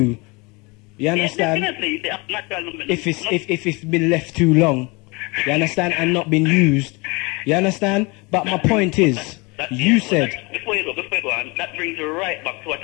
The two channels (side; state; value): right; quieter; 27.0 dB